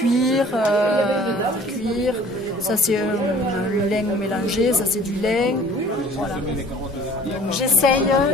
ça c'est un lin mélangé, ça c'est du lin, voilà. Donc j'essaye,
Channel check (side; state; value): both; normal; correlation 0.51